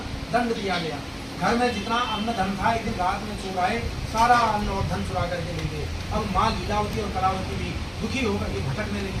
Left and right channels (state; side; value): identical; both; correlation 1.00